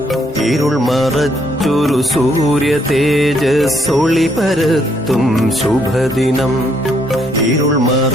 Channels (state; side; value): normal; both; correlation 0.72